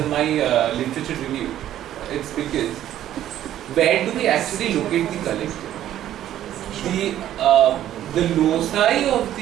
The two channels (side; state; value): left; quieter; 12.1 dB